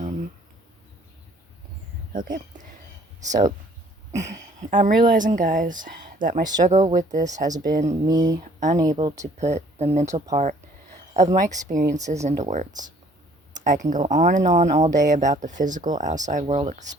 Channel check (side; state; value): both; normal; correlation 0.58